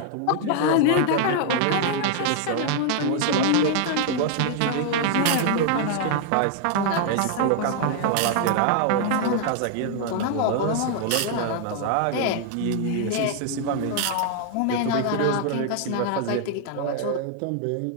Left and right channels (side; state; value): both; different; correlation 0.00